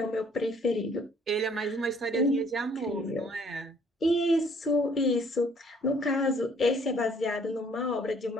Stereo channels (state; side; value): normal; both; correlation 0.60